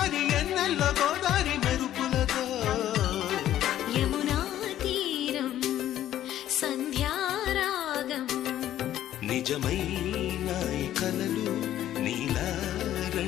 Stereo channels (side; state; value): right; quieter; 12.3 dB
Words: ఎన్నెల్లో గోదారి మెరుపులతో యమునా తీరం సంధ్యారాగం నిజమైన ఈ కలలు నీలా